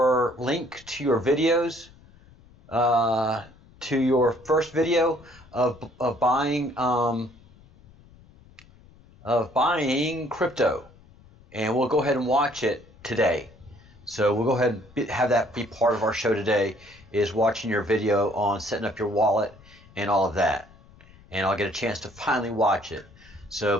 link to your videos, to your first video of buying crypto, and we'll go ahead and watch it today. So we'll go ahead and have that be part of our show today, is watching your video on setting up your wallet and all of that. And I'll get a chance to finally watch it.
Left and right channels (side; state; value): left; noise; rumble, 25 dB below the sound